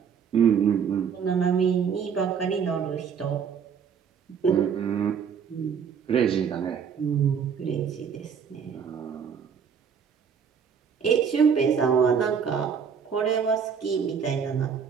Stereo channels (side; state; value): left; quieter; 7.0 dB